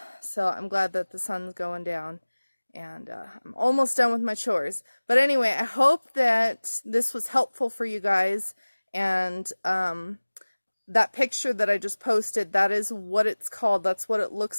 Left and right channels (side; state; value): both; inverted; correlation -1.00